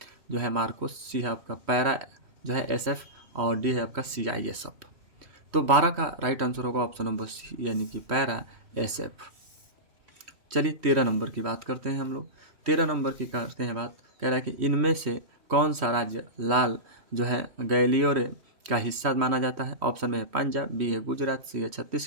जो है मार्कोस, सी है आपका पैरा जो है SF और डी है आपका CISF। तो 12 का राइट आंसर होगा ऑप्शन नंबर सी यानी कि पैरा SF। चलिए 13 नंबर की बात करते हैं हम लोग। 13 नंबर की करते हैं बात, कह रहा है कि इनमें से कौन सा राज्य लाल जो है गैलियोर का हिस्सा माना जाता है। ऑप्शन में है पंजाब, बी है गुजरात, सी है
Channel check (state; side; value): late; left; 3.1 ms